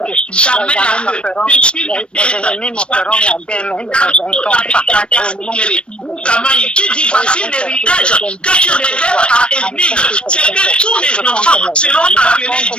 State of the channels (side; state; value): right; late; 0.057 ms